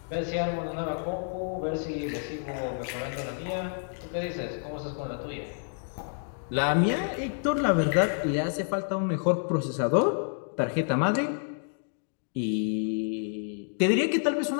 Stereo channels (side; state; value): right; silent; digital silence